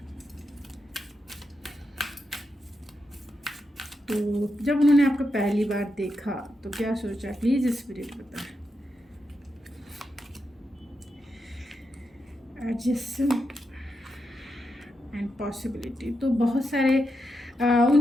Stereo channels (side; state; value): both; normal; correlation 0.85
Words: तो जब उन्होंने आपको पहली बार देखा तो क्या सोचा, प्लीज़ स्पिरिट बताएं। एडजस्टमेंट एंड पॉसिबिलिटी, तो बहुत सारे